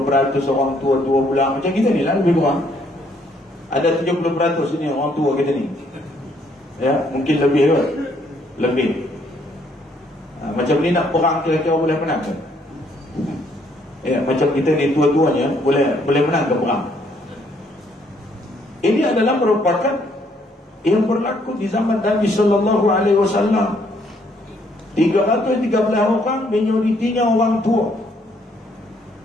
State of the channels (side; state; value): both; normal; correlation 0.68